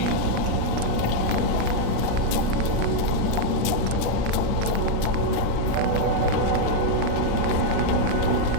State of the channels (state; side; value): different; both; correlation 0.00